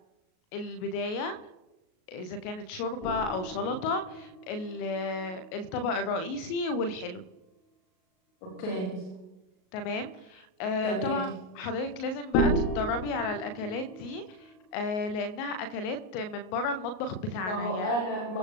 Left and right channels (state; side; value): late; right; 38 ms